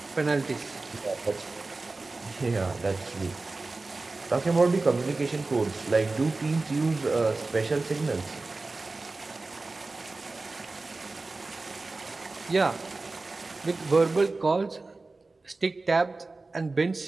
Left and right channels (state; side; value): quieter; left; 3.5 dB